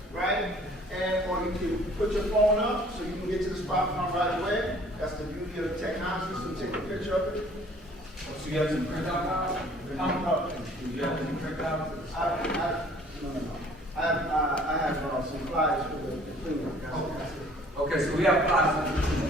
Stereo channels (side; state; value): both; normal; correlation 0.54